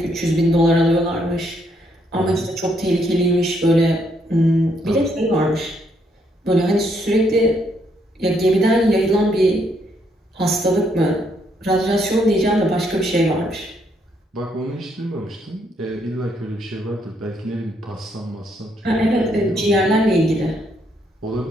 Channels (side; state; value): both; normal; correlation 0.73